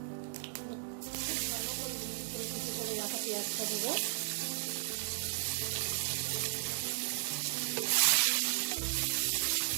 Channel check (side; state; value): left; silent; digital silence